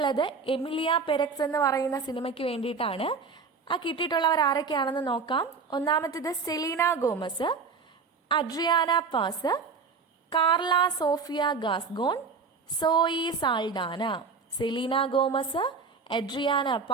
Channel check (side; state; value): left; quieter; 5.0 dB